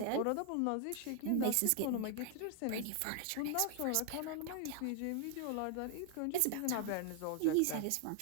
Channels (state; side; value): different; both; correlation 0.00